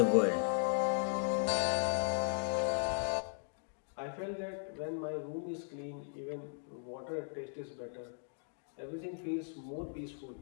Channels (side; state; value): right; silent; digital silence